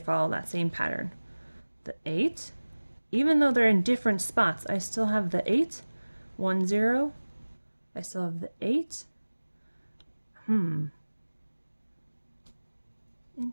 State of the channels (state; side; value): inverted; both; correlation -1.00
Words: that same pattern. The 8, even though they're in different spots, I still have the 8, 1 0. I still have the 8.